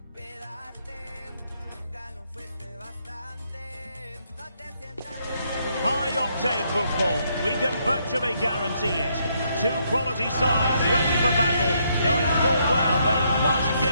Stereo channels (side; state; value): both; inverted; correlation -0.74